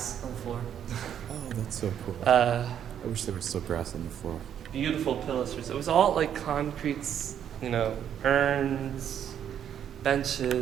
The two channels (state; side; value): quieter; left; 9.4 dB